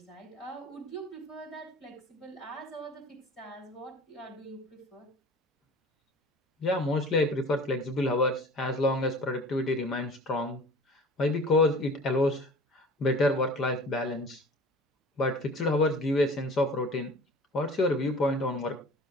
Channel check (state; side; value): normal; both; correlation 0.43